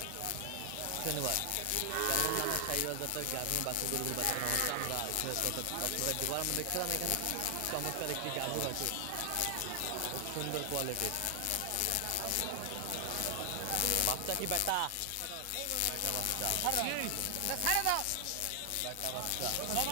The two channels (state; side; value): different; both; correlation 0.00